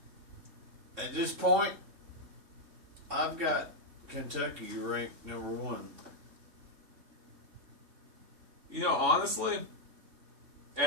at this point, I've got Kentucky ranked number 1. You know, honestly,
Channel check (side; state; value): left; late; 3.6 ms